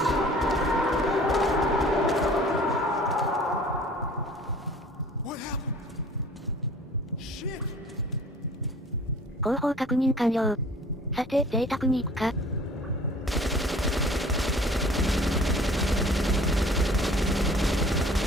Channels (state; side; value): normal; both; correlation 0.49